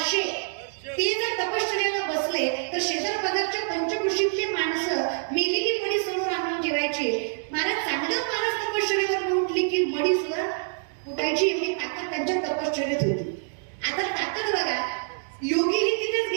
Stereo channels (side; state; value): left; silent; 61 dB below the other